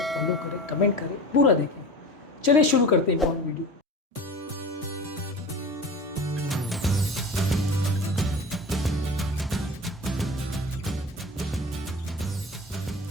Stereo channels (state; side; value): normal; both; correlation 0.34